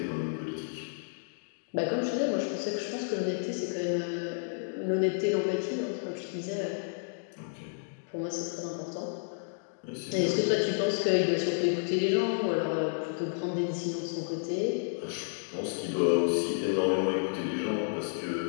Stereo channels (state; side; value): silent; right; digital silence